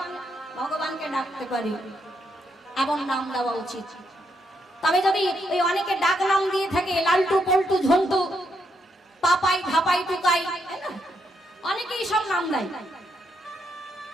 ডাকতে পারি, এমন নাম দেওয়া উচিত। তবে যদি ওই অনেকে ডাক নাম দিয়ে থাকে লালটু পল্টু ঝন্টু, পাপাই ধাপাই টুকাই, অনেকেই সব নাম দেয়।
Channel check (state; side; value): normal; both; correlation 0.78